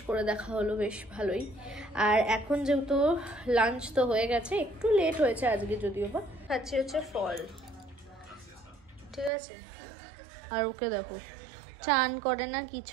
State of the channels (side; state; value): left; drops out; at 9.3 s